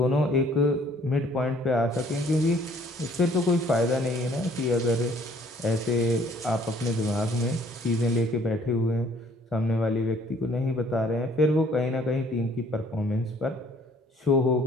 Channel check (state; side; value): normal; both; correlation 0.59